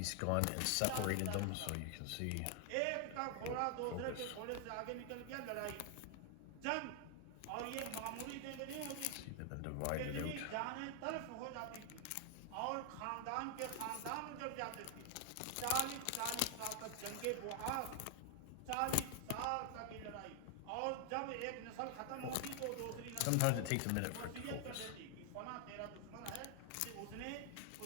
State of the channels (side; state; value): both; different; correlation 0.00